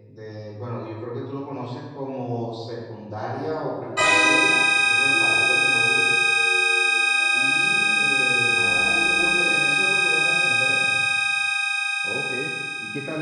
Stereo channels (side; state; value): both; identical; correlation 1.00